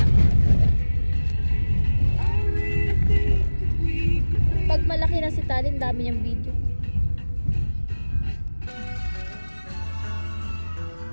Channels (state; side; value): inverted; both; correlation -1.00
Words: Pag malaki na si Talin, dami niyang video.